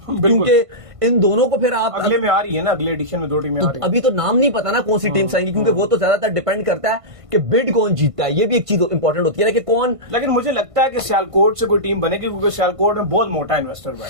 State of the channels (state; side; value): late; left; 1.5 ms